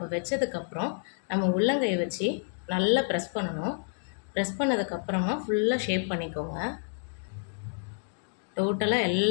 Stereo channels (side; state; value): right; silent; digital silence